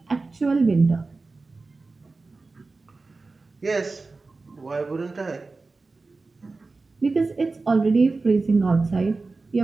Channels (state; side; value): quieter; left; 3.7 dB